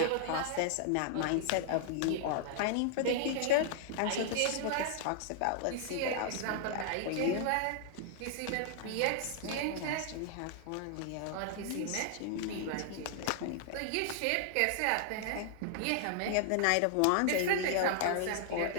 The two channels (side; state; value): both; different; correlation -0.01